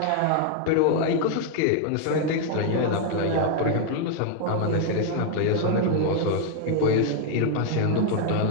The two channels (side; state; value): both; different; correlation 0.00